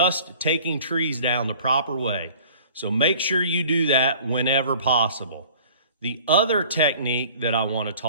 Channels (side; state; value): both; inverted; correlation -0.48